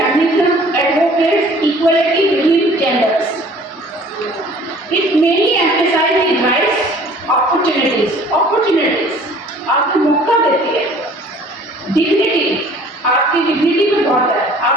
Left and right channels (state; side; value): normal; both; correlation 0.51